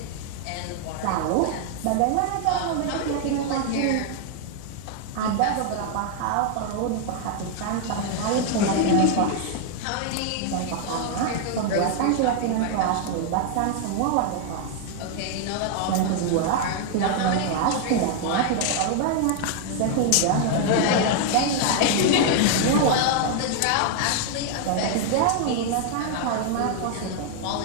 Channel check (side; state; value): both; different; correlation 0.00